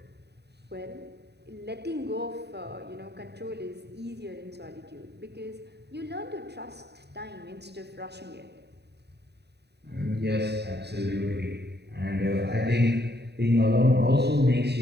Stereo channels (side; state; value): left; late; 0.48 ms